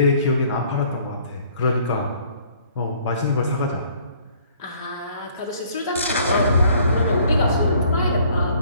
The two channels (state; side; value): inverted; both; correlation -0.59